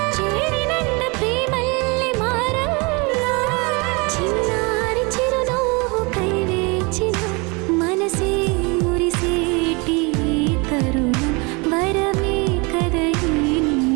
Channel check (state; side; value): quieter; left; 28.8 dB